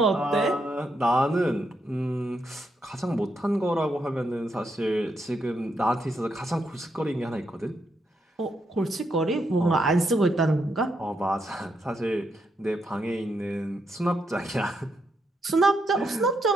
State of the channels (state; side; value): normal; both; correlation 0.80